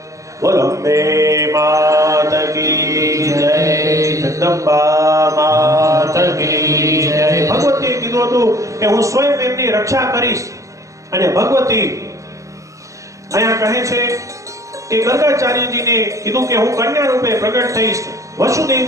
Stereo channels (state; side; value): late; left; 0.15 ms